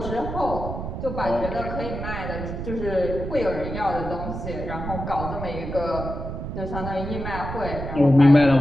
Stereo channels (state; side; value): noise; right; rumble, 6 dB below the sound